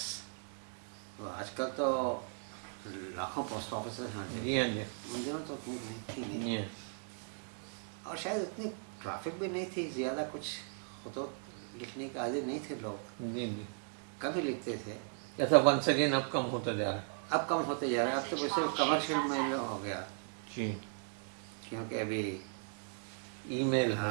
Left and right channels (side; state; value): left; silent; 53 dB below the other